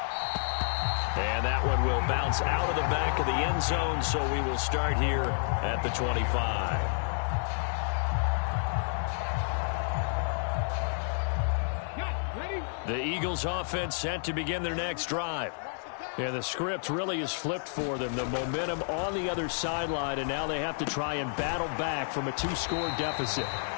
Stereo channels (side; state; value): right; silent; digital silence